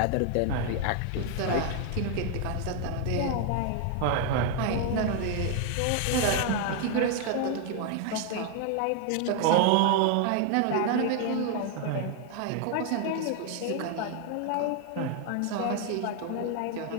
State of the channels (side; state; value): both; different; correlation 0.00